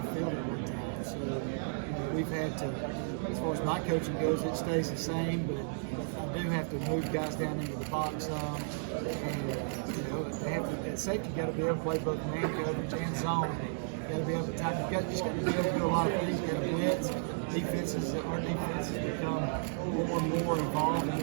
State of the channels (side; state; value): left; silent; digital silence